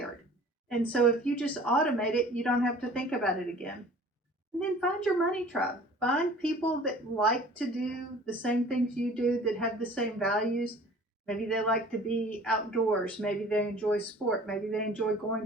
And so if you just automate it, you don't have to think about it again. And then find your money tribe. Find people that like to do the same things you do, that have the same values. Maybe they like to be outdoors. Maybe they enjoy sport. Maybe they enjoy going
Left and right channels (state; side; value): normal; both; correlation 0.47